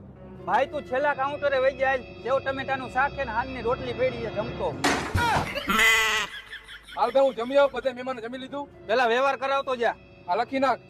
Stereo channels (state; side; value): identical; both; correlation 1.00